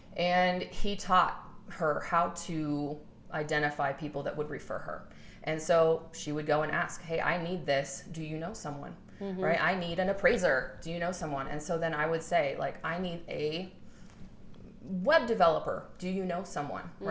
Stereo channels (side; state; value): both; identical; correlation 1.00